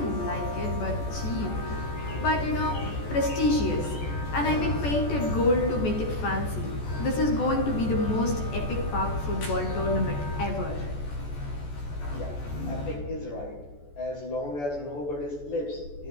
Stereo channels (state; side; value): late; right; 14 ms